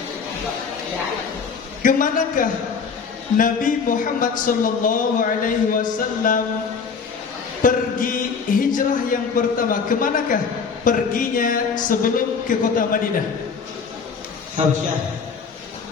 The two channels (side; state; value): right; quieter; 5.7 dB